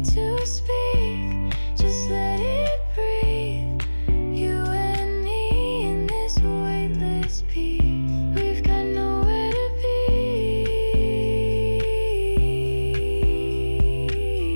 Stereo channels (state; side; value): inverted; both; correlation -1.00